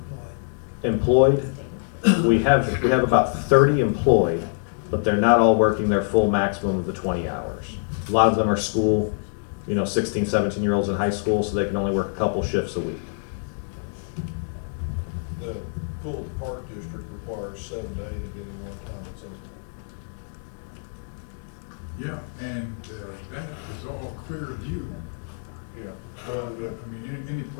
employed? Employed, we have about 30 employed, but they're not all working their full maximum of the 20 hours. A lot of them are school, 16, 17-year-olds in high school, so they can only work a couple shifts a week. The pool at the park district requires 7 to 8 at any one time it's open. Yeah, and that is all clear view. Yeah. I mean, any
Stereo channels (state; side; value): silent; right; digital silence